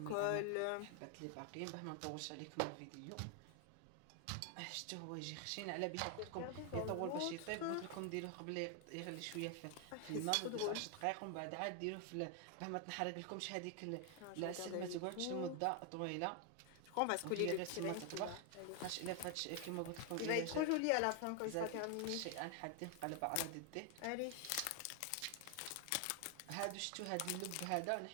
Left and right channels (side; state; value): both; different; correlation 0.00